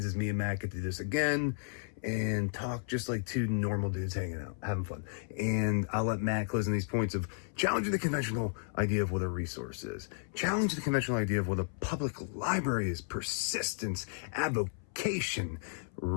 is me and Matt get to do this again and talk just like two normal dudes hanging out, having fun. And I'll let Matt close on these points of challenging the conventional idea of what a resource is, challenge the conventional idea of what a public library is, persistence, avocation,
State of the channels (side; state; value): right; silent; 55 dB below the other